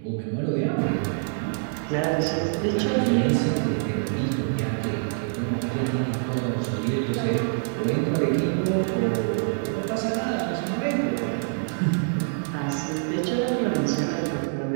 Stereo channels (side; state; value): left; silent; 61 dB below the other